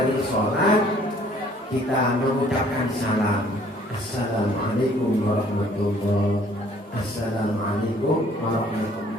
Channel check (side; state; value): both; normal; correlation 0.58